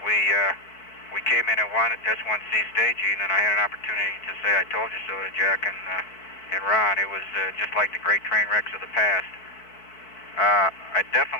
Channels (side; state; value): right; late; 4.5 ms